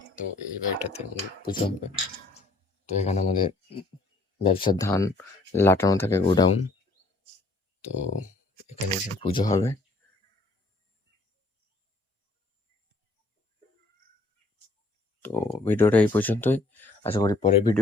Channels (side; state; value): right; quieter; 3.0 dB